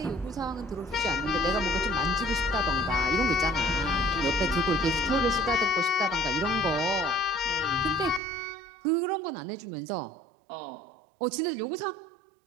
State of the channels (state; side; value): drops out; left; at 8.2 s